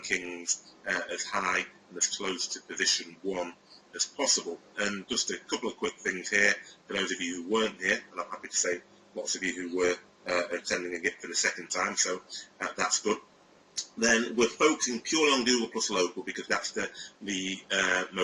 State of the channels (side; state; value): both; identical; correlation 1.00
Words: as high and as close to position 1 as possible. And just a couple of quick things here for those of you who weren't here, and I'm happy to say lots of you who were attending again for the second time, so that's good. Then we're focusing purely on Google Plus Local because that's the